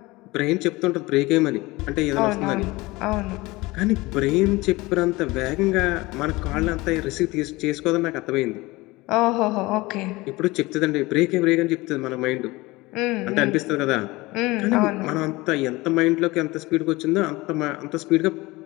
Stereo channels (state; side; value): quieter; right; 21.4 dB